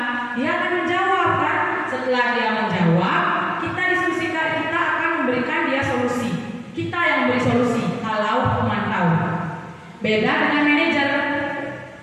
Dia akan menjawab kan. Setelah dia menjawab, kita diskusikan, kita akan memberikan dia solusi. Kita yang beri solusi kalau pemantau. Beda dengan manajer.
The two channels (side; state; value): both; identical; correlation 1.00